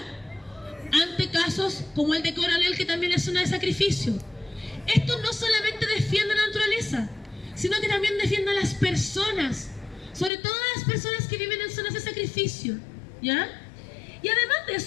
ante casos como el de Coronel, que también es zona de sacrificio. Esto no solamente defiende a la naturaleza, sino que también defiende a las personas, sobre todo a las personas que viven en zonas de sacrificio, ¿ya? Y además de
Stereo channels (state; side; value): drops out; right; at 10.3 s